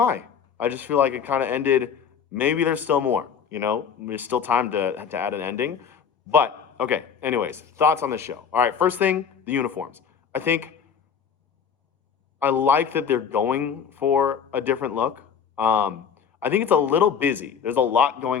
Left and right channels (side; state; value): right; quieter; 7.1 dB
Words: I just feel like it kind of ended, maybe there's still more, you know? There's still time to add an ending. But, okay, anyways, thoughts on the show. All right, first thing, the uniforms. I like that they're going for a different look. I think it's a little busy. There's a lot